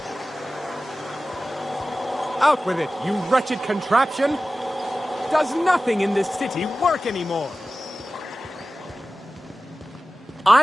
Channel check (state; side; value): normal; both; correlation 0.96